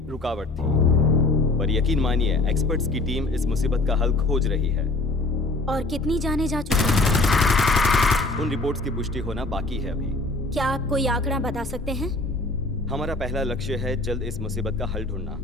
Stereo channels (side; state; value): right; quieter; 3.1 dB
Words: रुकावट थी, पर यकीन मानिए एक्सपर्ट्स की टीम इस मुसीबत का हल खोज रही है। और कितनी जाने जा चुकी है? उन रिपोर्ट्स की पुष्टि होना बाकी है अभी। क्या आप कोई आंकड़ा बता सकते हैं? हमारा पहला लक्ष्य है जल्द इस मुसीबत का हल ढूंढना।